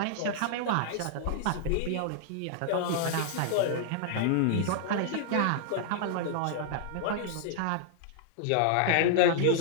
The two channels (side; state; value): both; different; correlation -0.01